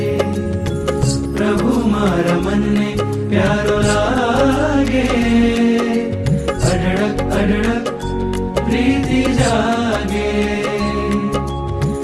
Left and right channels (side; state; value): both; identical; correlation 1.00